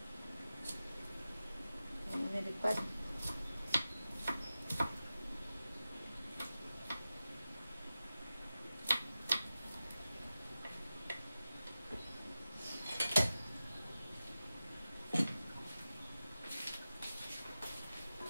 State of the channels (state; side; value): inverted; both; correlation -0.94